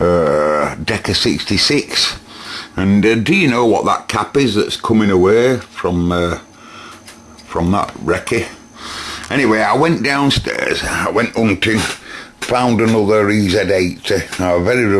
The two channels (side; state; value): both; identical; correlation 1.00